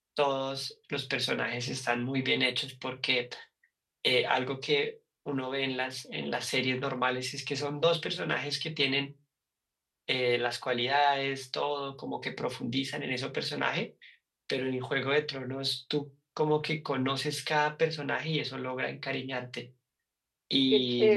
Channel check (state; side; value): identical; both; correlation 1.00